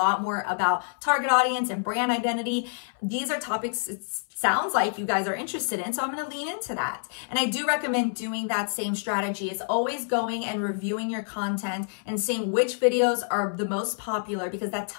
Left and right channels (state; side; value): silent; right; 60 dB below the other